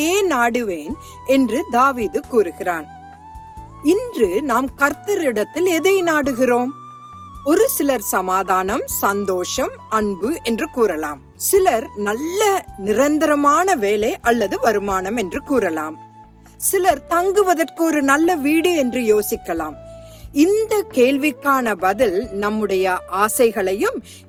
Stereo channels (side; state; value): both; identical; correlation 1.00